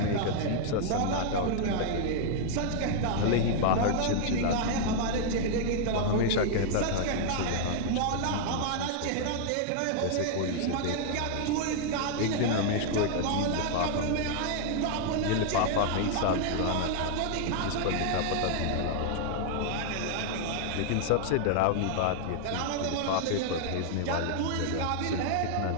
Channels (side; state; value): both; different; correlation 0.00